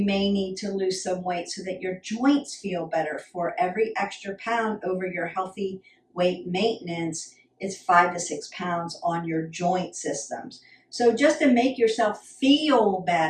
may need to lose some weight so that your joints feel better. For every extra pound over your healthy weight maintenance, it's 5 to 6 pounds on your joint systems. So just to make yourself feel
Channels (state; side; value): identical; both; correlation 1.00